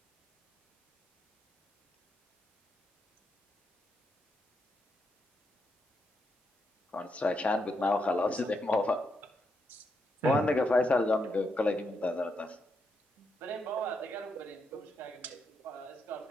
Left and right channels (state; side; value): normal; both; correlation 0.81